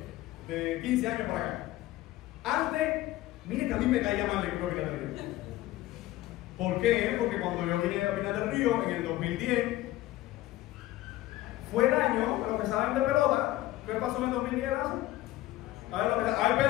de 15 años para acá. Antes, miren que a mí me caía mal el equipo de Pinar del Río. ¿Por qué? Porque cuando yo vine a Pinar del Río en el 2010, fue el año, a los que saben de pelota, ¿qué pasó en el 2010? A ver,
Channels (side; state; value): right; quieter; 16.3 dB